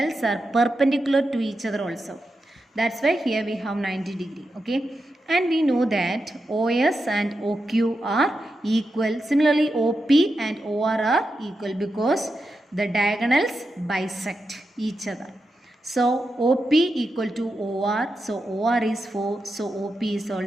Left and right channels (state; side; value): normal; both; correlation 0.88